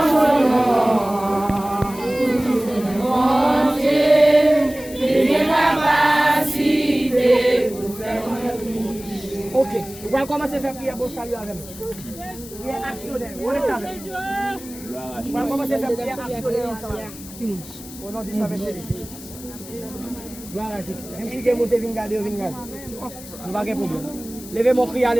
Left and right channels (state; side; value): noise; left; hiss, 16 dB below the sound